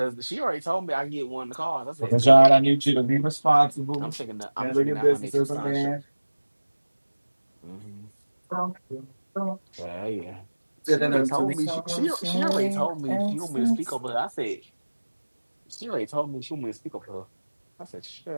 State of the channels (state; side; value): inverted; both; correlation -1.00